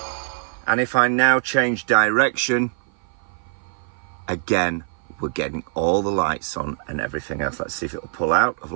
And if I now change direction, again, we're getting all the lights on and everything else. Let's see if it'll pull out of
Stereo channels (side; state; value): left; silent; 56 dB below the other